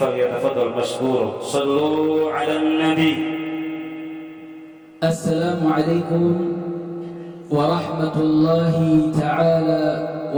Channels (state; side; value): identical; both; correlation 1.00